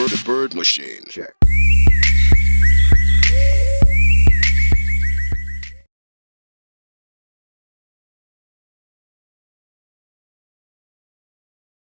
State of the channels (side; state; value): both; inverted; correlation -1.00